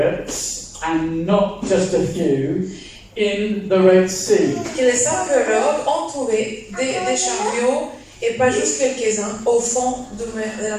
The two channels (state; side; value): identical; both; correlation 1.00